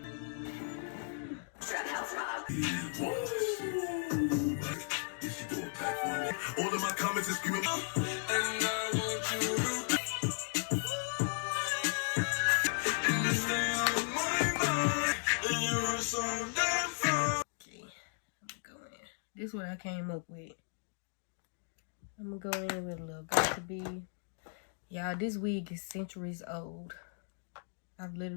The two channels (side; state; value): right; silent; digital silence